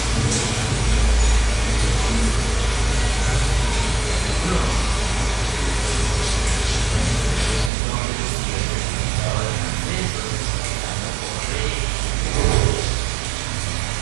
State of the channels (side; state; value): left; drops out; at 7.7 s